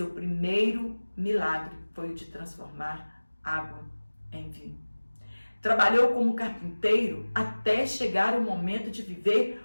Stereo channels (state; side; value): inverted; both; correlation -1.00